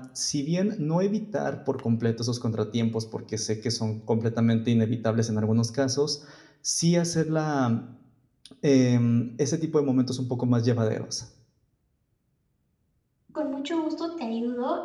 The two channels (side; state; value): both; identical; correlation 1.00